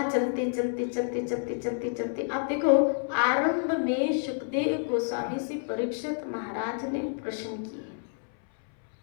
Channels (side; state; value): right; silent; 59 dB below the other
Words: चलते चलते चलते चलते चलते चलते, आप देखो आरंभ में सुखदेव गोस्वामी से परीक्षित महाराज ने प्रश्न किए।